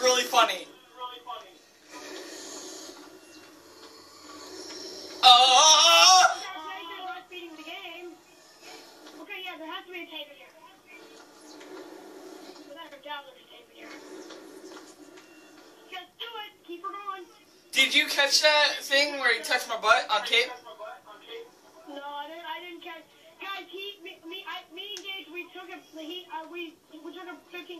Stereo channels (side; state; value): both; identical; correlation 1.00